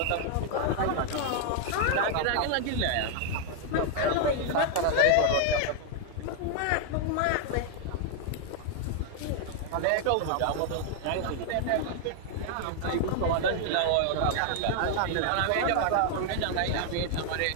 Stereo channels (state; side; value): different; both; correlation 0.00